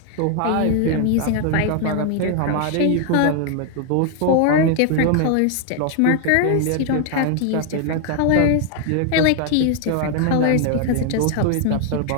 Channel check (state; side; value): different; both; correlation 0.00